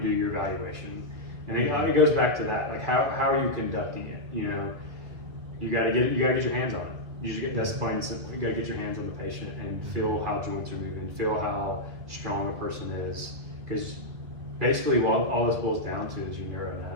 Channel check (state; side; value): late; left; 2.0 ms